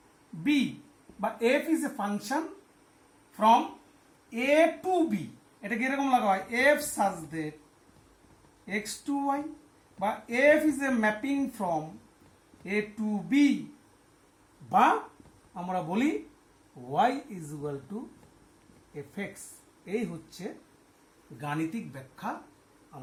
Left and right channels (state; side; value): identical; both; correlation 1.00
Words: B, বা f is a function from A to B, এটাকে এরকম লাগা হয় f such that x to y, বা f is a mapping from A to B, বা আমরা বলি y is equal to f x. এই হচ্ছে গাণিতিক ব্যাখ্যা